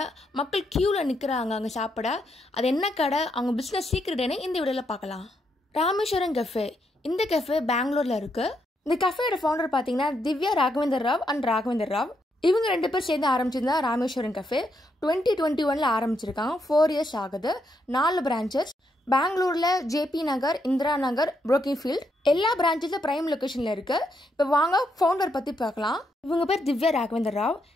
மக்கள் கியூல நிக்கிறாங்க அங்க சாப்பிட. அது என்ன கடை, அவங்க பிசினஸ் சீக்ரெட்னு இந்த வீடியோல பார்க்கலாம். ராமேஸ்வரம் கஃபே. இந்த கஃபே பெங்களூர்ல இருக்கு. இந்த கஃபேயோட ஃபவுண்டர் பாத்தீங்கன்னா திவ்யா ராகவேந்தர் ராவ் அண்ட் ராகவேந்தர் ராவ். இவங்க 2 பேர் சேர்ந்து ஆரம்பிச்சிருந்தா ராமேஸ்வரம் கஃபே 2021 ஆரம்பிச்சிருக்காங்க. 4 இயர்ஸ் ஆகுது. 4 பிரான்ச்சஸ் பெங்களூர்ல ஜேபி நகர், இந்திரா நகர், புரோக்கின்ஃபீல்ட் எல்லா பிரான்ச்சஸும் பிரைம் லொகேஷன்ல இருக்கு. இப்போ வாங்க ஃபவுண்டர் பத்தி பார்க்கலாம். இவங்க பேர் Divya Raghavendra Rao,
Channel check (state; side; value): normal; both; correlation 0.78